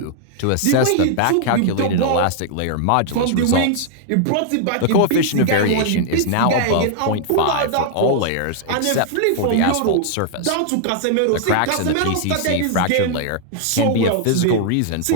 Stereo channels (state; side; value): different; both; correlation -0.01